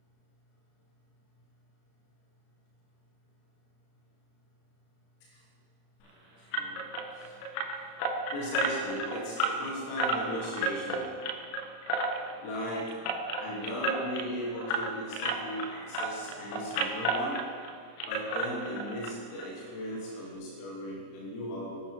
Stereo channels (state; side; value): late; right; 35 ms